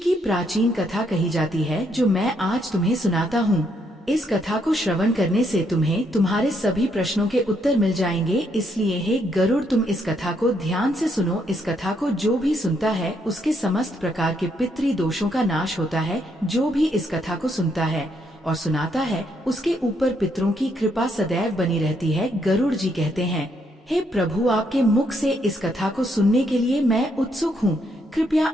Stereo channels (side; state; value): both; normal; correlation 0.74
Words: प्राचीन कथा कही जाती है, जो मैं आज तुम्हें सुनाता हूँ। इस कथा को श्रवण करने से तुम्हें तुम्हारे सभी प्रश्नों के उत्तर मिल जाएंगे। इसलिए हे गरुड़, तुम इस कथा को ध्यान से सुनो। इस कथा को जो भी सुनता है उसके समस्त प्रकार के पितृ दोषों का नाश होता है। जो भी इस कथा को सुनता है और सुनाता है उसके ऊपर पितरों की कृपा सदैव बनी रहती है। गरुड़ जी कहते हैं, हे प्रभु, आपके मुख से इस कथा को सुनने के लिए मैं उत्सुक हूँ। कृपया